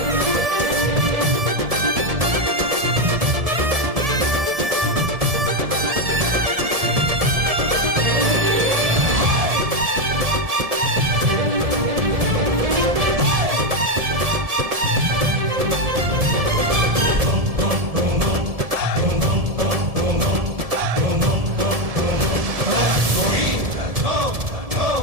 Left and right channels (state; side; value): late; left; 1.7 ms